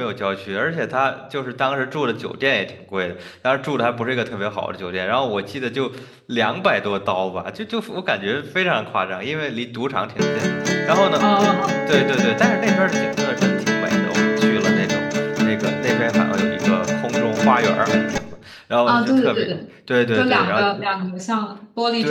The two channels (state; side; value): identical; both; correlation 1.00